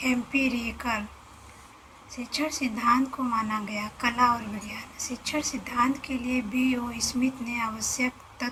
एम्पिरिकल शिक्षण सिद्धांत को माना गया। कला और विज्ञान। शिक्षण सिद्धांत के लिए B.O. स्मिथ ने आवश्यक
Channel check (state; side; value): identical; both; correlation 1.00